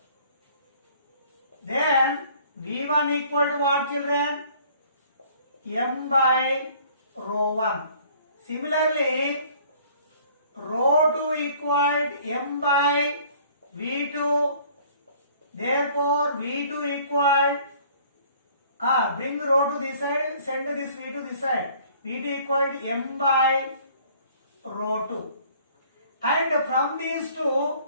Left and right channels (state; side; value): inverted; both; correlation -0.55